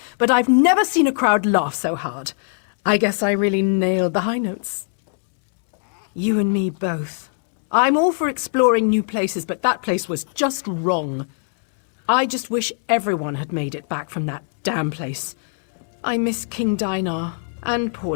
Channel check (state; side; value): silent; right; 64 dB below the other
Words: but I've never seen a crowd laugh so hard. I guess I really nailed the high notes. You and me both. I'm all for exploring new places, but that place was just wrong. I just wish everyone had made it back from that damn place. I miss King Dinar and poor